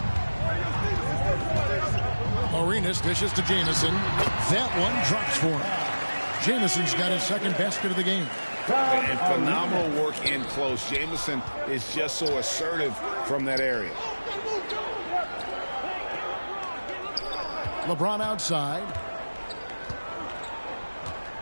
Arenas dishes to Jamison. That one drops for him. Jamison's got his second basket of the game. And phenomenal work in close. Jamison is just so assertive from that area. LeBron outside.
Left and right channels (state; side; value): inverted; both; correlation -1.00